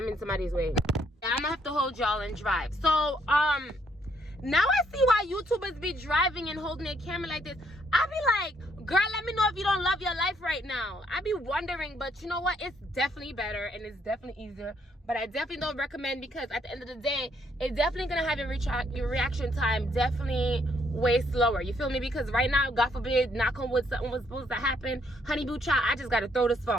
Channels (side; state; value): both; normal; correlation 0.70